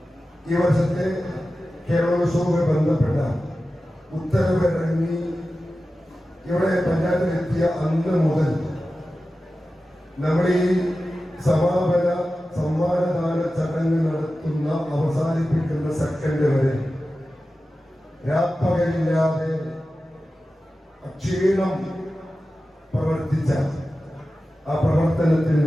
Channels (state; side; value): normal; both; correlation 0.94